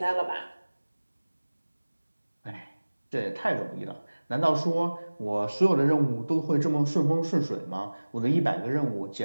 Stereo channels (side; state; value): both; inverted; correlation -1.00